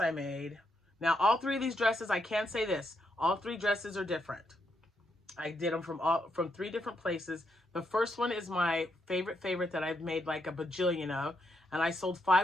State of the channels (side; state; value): both; normal; correlation 0.79